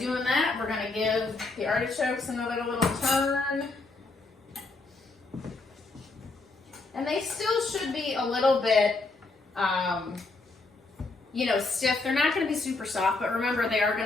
that, we're gonna give the artichokes another little turn. And they still should be a little bit, you know, stiff. They're not gonna be super soft, but remember they are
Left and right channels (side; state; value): right; quieter; 3.5 dB